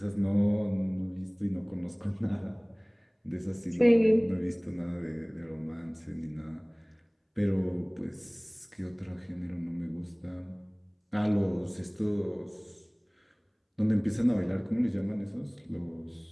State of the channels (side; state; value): both; identical; correlation 1.00